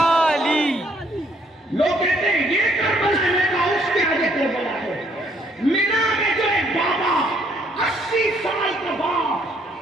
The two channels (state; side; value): normal; both; correlation 0.67